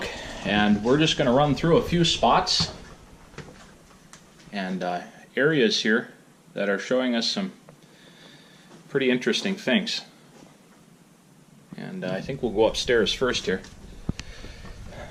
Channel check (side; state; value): both; identical; correlation 1.00